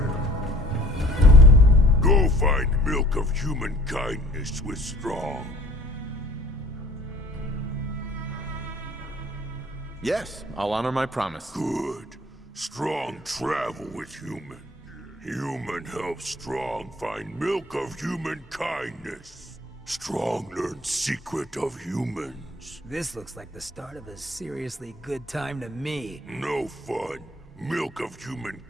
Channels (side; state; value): both; normal; correlation 0.52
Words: Go find milk of human kindness with Strong. Yes, I'll honor my promise. Good. Strong travel with Human. Human helps Strong find milk of human kindness. Strong learns secret of humans. This looks like the start of a seriously good time to me. No fun. Milk of human